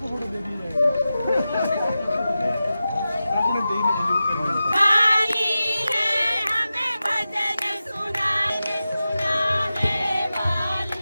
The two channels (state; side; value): inverted; both; correlation -0.93